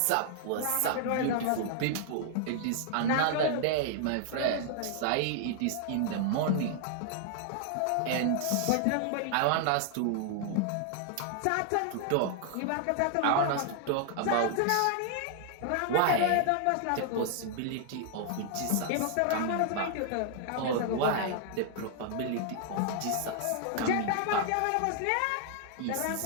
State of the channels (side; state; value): both; different; correlation 0.00